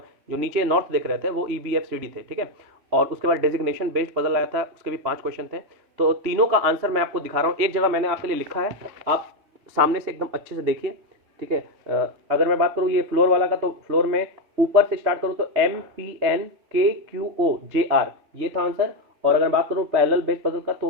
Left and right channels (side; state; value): left; late; 3.1 ms